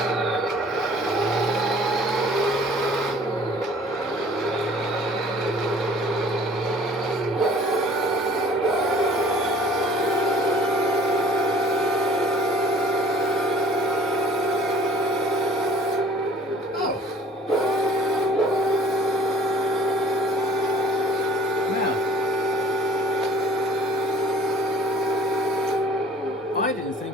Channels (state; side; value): normal; both; correlation 0.51